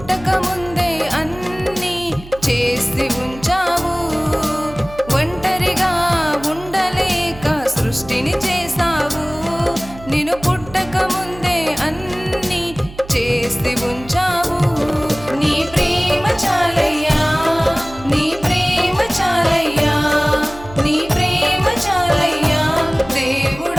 ముందే అన్నీ చేసి ఉంచావు. ఒంటరిగా ఉండలేక సృష్టిని చేసావు. నిన్ను పుట్టక ముందే అన్నీ చేసి ఉంచావు. నీ ప్రేమ చాలయ్యా, నీ ప్రేమ చాలయ్యా, నీ ప్రేమ చాలయ్యా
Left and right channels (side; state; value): right; noise; hum, 17 dB below the sound